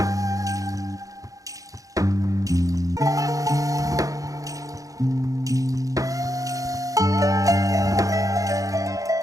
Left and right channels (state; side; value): late; left; 0.17 ms